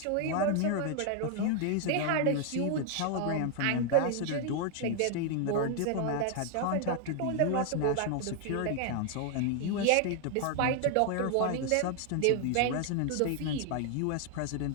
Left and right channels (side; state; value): both; different; correlation 0.00